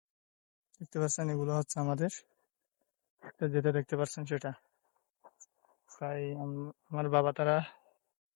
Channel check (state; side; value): quieter; right; 35.6 dB